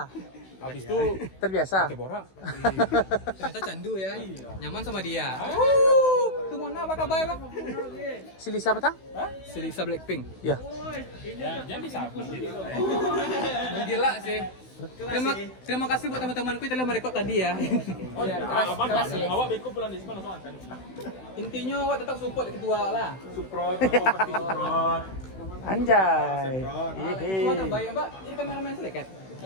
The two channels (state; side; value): late; right; 16 ms